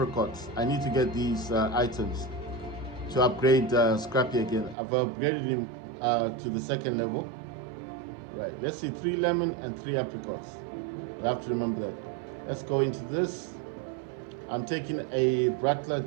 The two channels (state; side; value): drops out; left; at 4.8 s